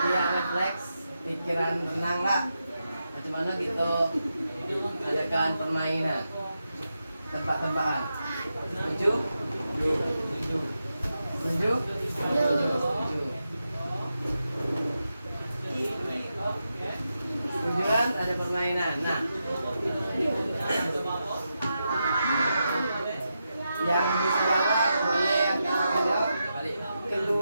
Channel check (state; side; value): inverted; both; correlation -0.87